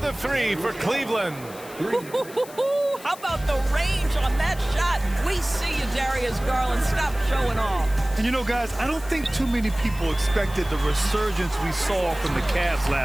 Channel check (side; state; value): left; noise; hiss, 18 dB below the sound